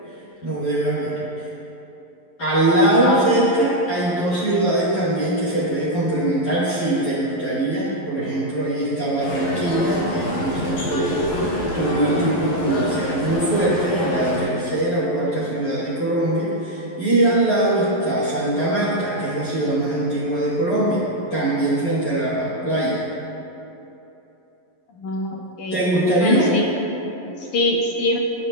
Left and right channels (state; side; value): late; right; 11 ms